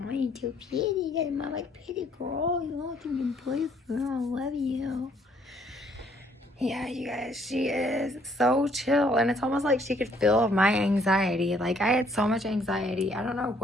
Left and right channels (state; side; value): normal; both; correlation 0.65